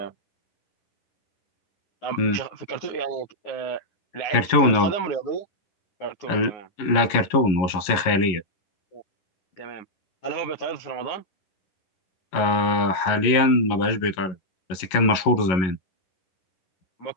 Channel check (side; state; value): right; late; 11 ms